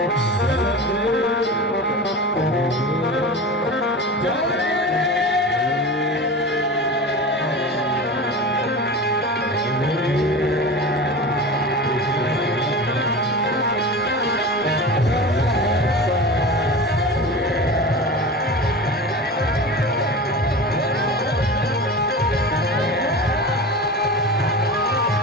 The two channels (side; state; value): both; normal; correlation 0.30